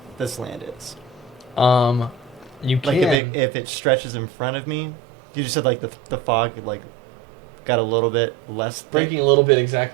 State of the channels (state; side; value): drops out; left; at 3.2 s